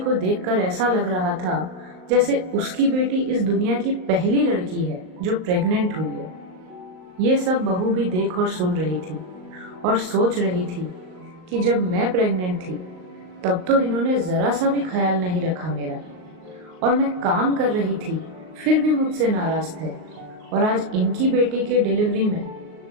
देखकर ऐसा लग रहा था जैसे उसकी बेटी इस दुनिया की पहली लड़की है जो प्रेग्नेंट हुई है। ये सब बहू भी देख और सुन रही थी और सोच रही थी कि जब मैं प्रेग्नेंट थी तब तो इन्होंने ज़रा सा भी ख्याल नहीं रखा मेरा, और मैं काम कर रही थी फिर भी मुझसे नाराज़ थे, और आज इनकी बेटी के डिलीवरी में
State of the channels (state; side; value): late; left; 38 ms